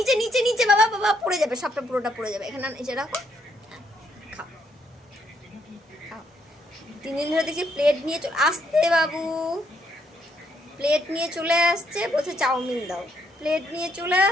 নিচে নিচে, বাবা বাবা পড়ে যাবে, সবটা পুরোটা পড়ে যাবে। এখানে এসে রাখো, খাও খাও। 3 দিন ধরে দেখছি প্লেট নিয়ে চলে আসতে, বাবু প্লেট নিয়ে চলে আসছে, বলছে চাউমিন দাও। প্লেট নিয়ে চলে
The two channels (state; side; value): normal; both; correlation 0.72